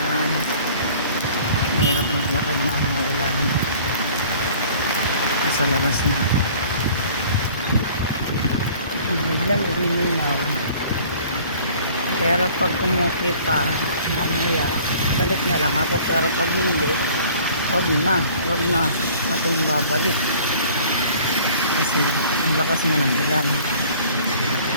mahirap maglakad na ang ulan. Nasa labas na ako. Biglang luminaw. Pero pag umukit pa, mamaya, balik na lang ako. Pero pag hindi, wag na akong babalik. Kasi ang lakas na ng ulan.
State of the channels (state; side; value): inverted; both; correlation -0.50